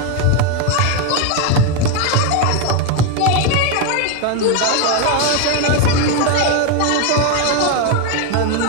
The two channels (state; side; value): different; both; correlation 0.01